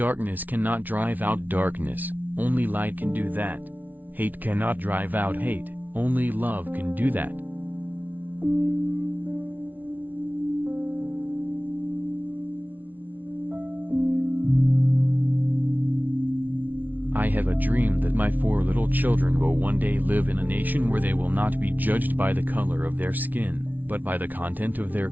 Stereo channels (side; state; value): left; late; 0.080 ms